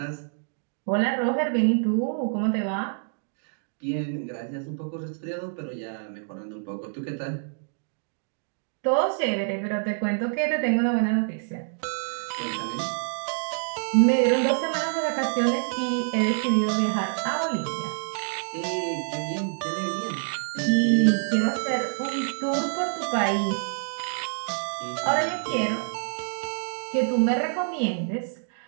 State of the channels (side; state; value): left; silent; digital silence